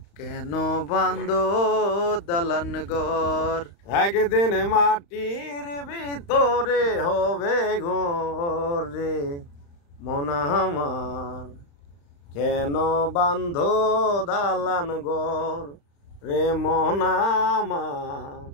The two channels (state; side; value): late; right; 35 ms